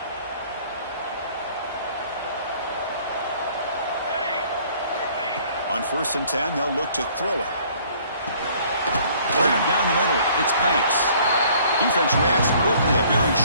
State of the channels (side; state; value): both; inverted; correlation -0.57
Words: On 1st and 10, they'll look to throw it. Grab down the middle. It's Banks. Defense reacts quickly. A very